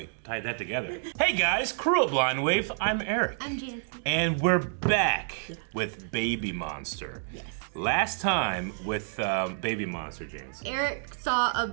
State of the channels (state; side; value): silent; left; digital silence